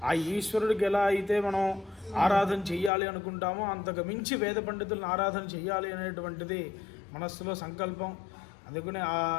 ఆ ఈశ్వరుడికి ఎలా అయితే మనం ఆరాధన చెయ్యాలి అనుకుంటామో అంతకు మించి వేద పండితులను ఆరాధన చెయ్యాలి అనేటువంటిది మనస్సులో సంకల్పం. అందుకనే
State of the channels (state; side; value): drops out; right; at 2.9 s